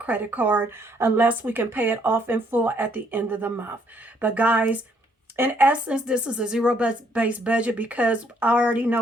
card unless we can pay it off in full at the end of the month. But guys, in essence, this is a zero-based budget because I already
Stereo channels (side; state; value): both; normal; correlation 0.68